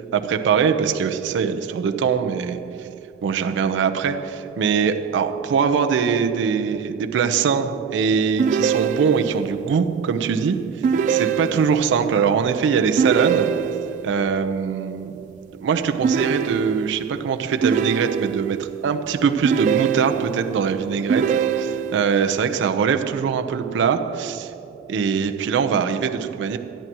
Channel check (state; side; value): quieter; left; 6.2 dB